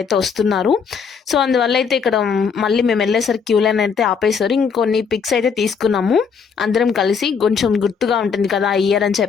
అయితే వస్తున్నారు. సో అందువల్ల అయితే ఇక్కడ మళ్ళీ మేము వెళ్ళేసరికి క్యూ లైన్ అయితే ఆపేశారు. ఇంకొన్ని పిక్స్ అయితే తీసుకున్నాము అందరం కలిసి, కొంచెం గుర్తుగా ఉంటుంది కదా ఇయర్ అని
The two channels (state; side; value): quieter; right; 6.1 dB